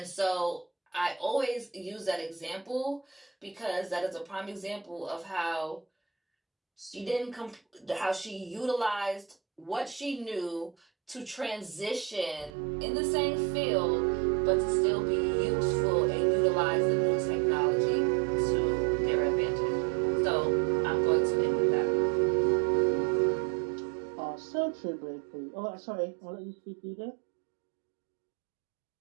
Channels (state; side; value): drops out; left; at 12.5 s